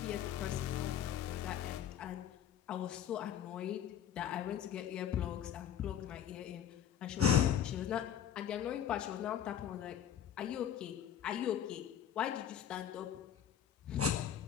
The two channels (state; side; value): quieter; right; 9.6 dB